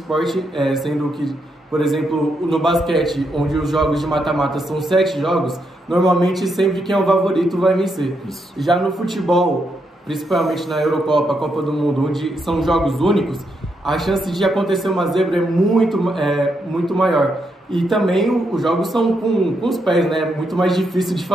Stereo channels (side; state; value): both; normal; correlation 0.80